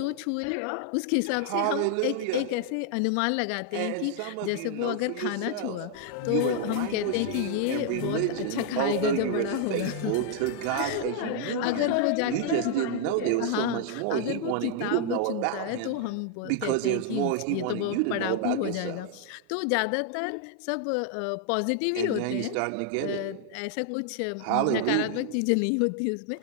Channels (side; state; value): both; different; correlation 0.00